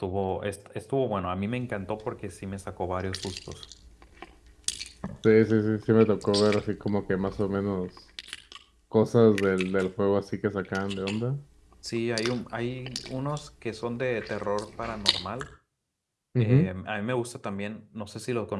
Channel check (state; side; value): identical; both; correlation 1.00